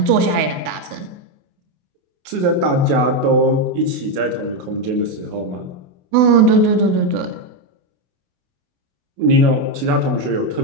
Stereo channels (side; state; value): left; late; 28 ms